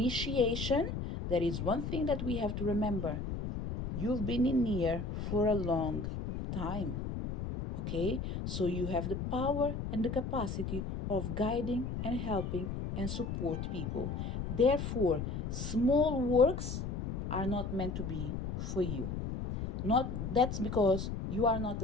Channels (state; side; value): noise; left; rumble, 4 dB below the sound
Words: there is one thing that we have to remember. You've been in here for a long time. Okay? So you have the power and the capacity of guiding and helping and support people. Therefore, small works are not meant to be for you. That's because you are not